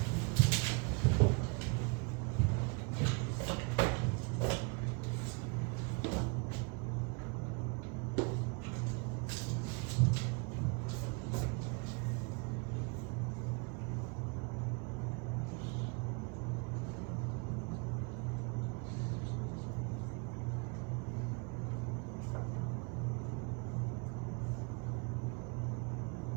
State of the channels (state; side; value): quieter; left; 33.4 dB